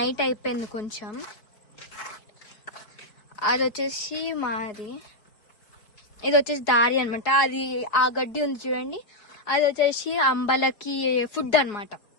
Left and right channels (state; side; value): late; right; 4.7 ms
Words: అయిపోయింది కొంచెం. అది వచ్చేసి మాది, ఇది వచ్చేసి దారి అనమాట. అది ఆ గడ్డి ఉంది చూడండి, అది వచ్చేసి అంబలకి ఫుడ్ అనమాట.